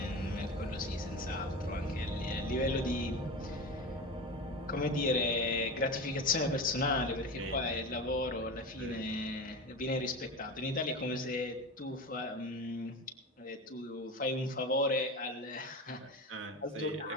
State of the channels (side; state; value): both; normal; correlation 0.26